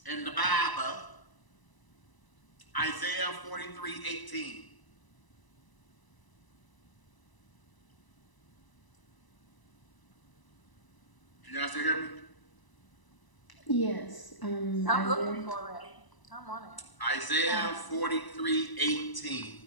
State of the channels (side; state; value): right; late; 1.0 ms